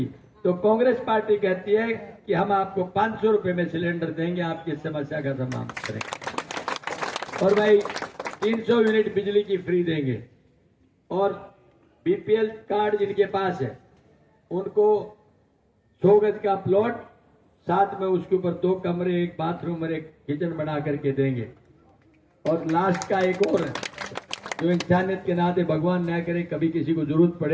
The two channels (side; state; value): both; identical; correlation 1.00